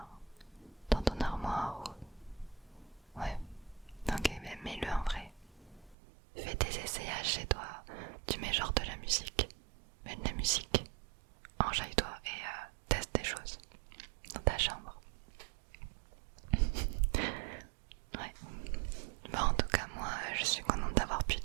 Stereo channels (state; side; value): drops out; left; at 6.0 s